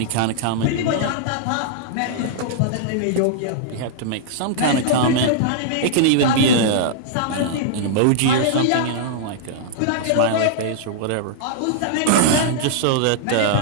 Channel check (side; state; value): both; different; correlation -0.01